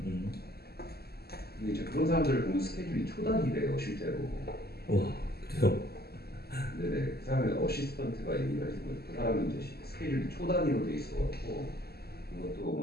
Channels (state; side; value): late; right; 0.46 ms